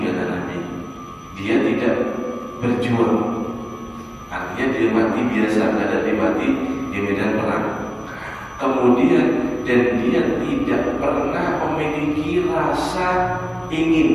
kata Nabi, dia tidak berjuang, artinya dia mati biasa, tidak mati di medan perang. Kemudian dan dia tidak pernah memiliki rasa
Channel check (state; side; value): identical; both; correlation 1.00